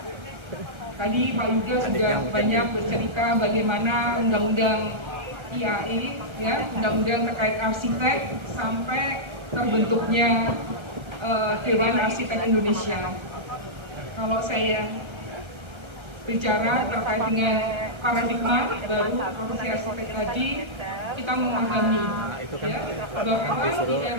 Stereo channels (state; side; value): late; left; 1.3 ms